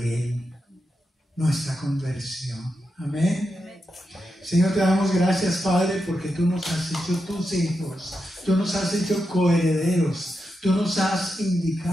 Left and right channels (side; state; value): both; normal; correlation 0.87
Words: nuestra conversión. Amén. Señor, te damos gracias, Padre, porque tú nos has hecho tus hijos, tú nos has hecho coherederos, tú nos has